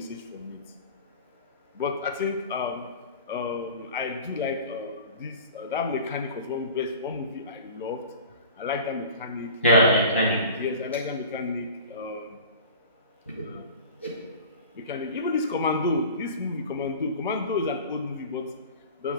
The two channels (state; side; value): inverted; both; correlation -0.39